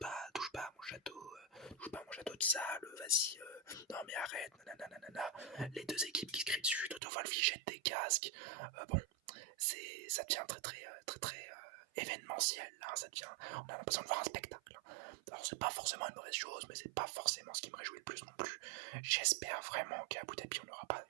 à mon château, touche pas à mon château de sable, vas-y, non mais arrête, nanana. Les deux équipes qui se crient dessus, Toto Wolff il jette des casques, bon, ça devient très événementiel, hein, on a l'impression de voir un spectacle. Alors c'est pas forcément une mauvaise chose, mais c'est pas forcément ce qui me réjouit le plus non plus. J'espère vraiment qu'à Abu Dhabi on n'aura pas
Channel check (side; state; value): left; drops out; at 7.0 s